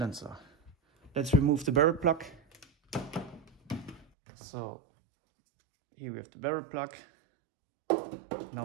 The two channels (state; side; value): drops out; left; at 4.0 s